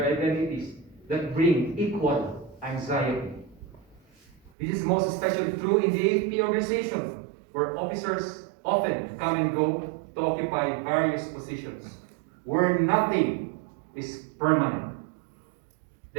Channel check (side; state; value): left; drops out; at 4.5 s